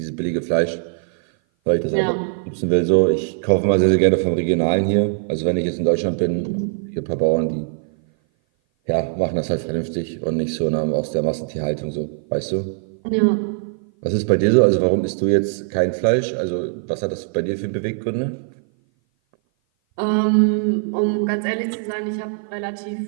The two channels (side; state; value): left; silent; 57 dB below the other